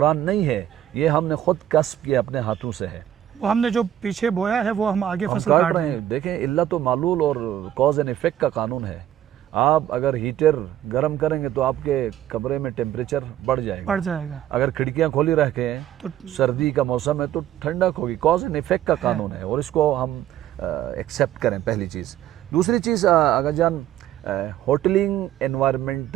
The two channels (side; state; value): left; quieter; 11.8 dB